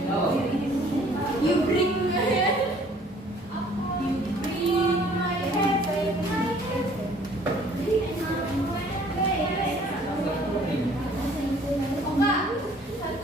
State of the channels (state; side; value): normal; both; correlation 0.56